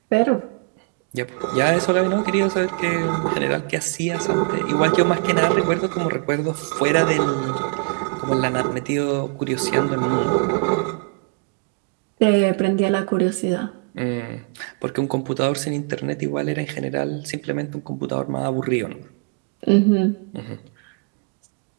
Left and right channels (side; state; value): left; quieter; 32.6 dB